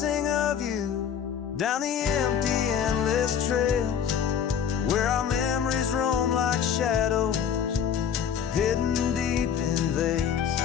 of you down the empty, endless trails where our memories roam like shadows hidden deep in veils.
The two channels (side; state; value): right; quieter; 8.0 dB